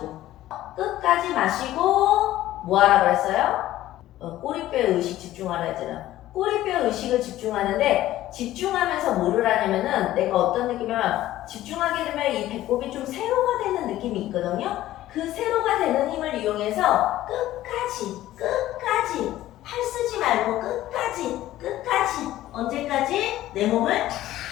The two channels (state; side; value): quieter; right; 14.5 dB